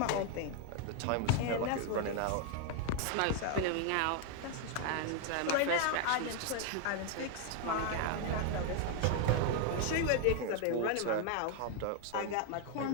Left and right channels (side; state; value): both; different; correlation 0.00